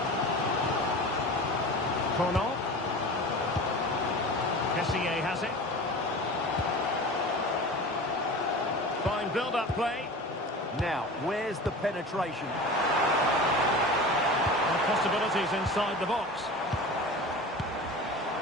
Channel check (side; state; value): both; normal; correlation 0.34